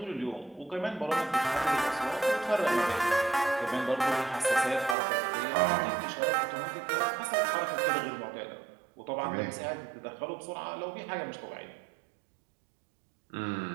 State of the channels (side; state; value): left; drops out; at 5.0 s